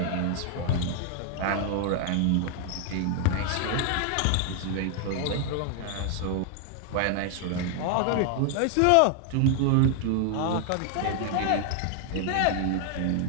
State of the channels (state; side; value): different; both; correlation 0.00